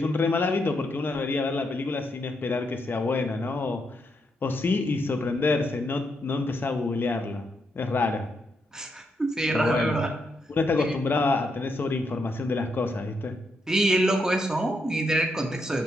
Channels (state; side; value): normal; both; correlation 0.80